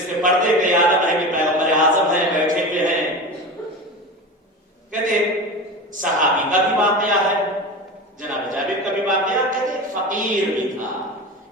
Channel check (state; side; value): normal; both; correlation 0.28